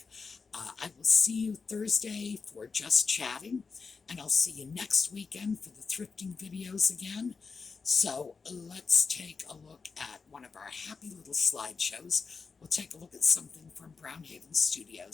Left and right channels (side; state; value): right; quieter; 4.9 dB